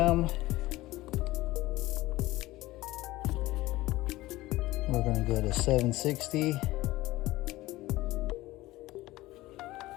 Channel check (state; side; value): quieter; right; 18.0 dB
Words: We're gonna go to 760.